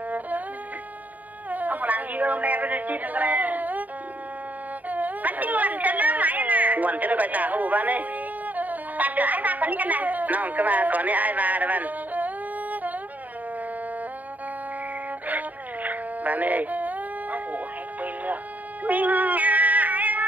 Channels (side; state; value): left; late; 0.078 ms